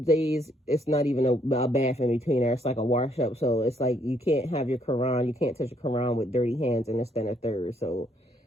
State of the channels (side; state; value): both; normal; correlation 0.70